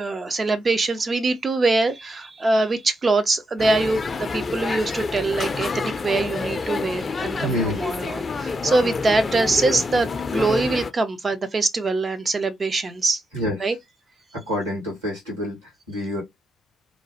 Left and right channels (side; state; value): both; normal; correlation 0.84